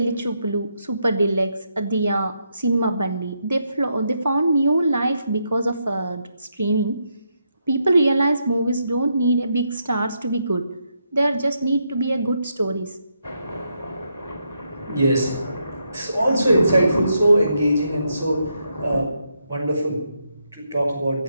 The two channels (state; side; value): inverted; both; correlation -0.80